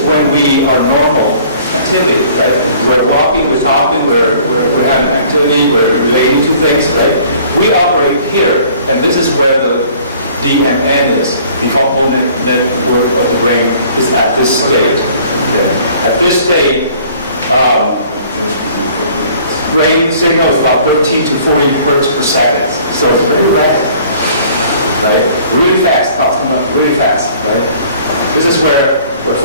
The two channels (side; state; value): both; inverted; correlation -0.54